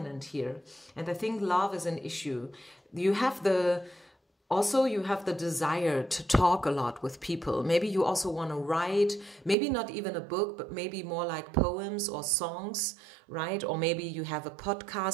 here. And I think love is an issue. You have the desire to talk a lot with people. Maybe you also want to write, maybe not even a book, but maybe more like poems or songs, right? Or maybe you have a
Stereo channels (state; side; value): drops out; left; at 9.6 s